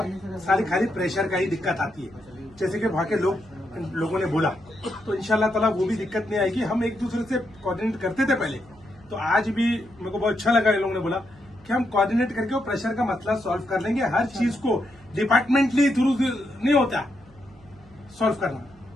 सारी खाली प्रेशर का ही दिक्कत आती है, जैसे कि वहाँ के लोगों ने बोला, तो इंशाल्लाह ताला वो भी दिक्कत नहीं आएगी। हम एक दूसरे से कोऑर्डिनेट करते थे पहले, तो आज भी मेरे को बहुत अच्छा लगा इन लोगों ने बोला कि हम कोऑर्डिनेट करके वो प्रेशर का मसला सॉल्व कर लेंगे। हर चीज को डिपार्टमेंटली थ्रू नहीं होता सॉल्व करना,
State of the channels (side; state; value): right; noise; hum, 26 dB below the sound